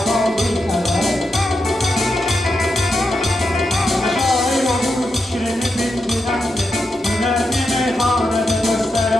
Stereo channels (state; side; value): normal; both; correlation 0.86